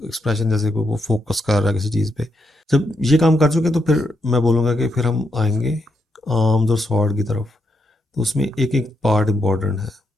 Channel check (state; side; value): normal; both; correlation 0.80